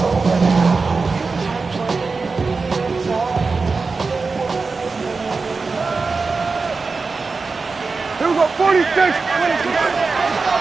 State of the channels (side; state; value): left; quieter; 4.3 dB